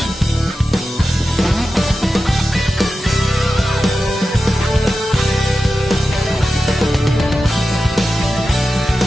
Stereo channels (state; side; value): normal; both; correlation 0.92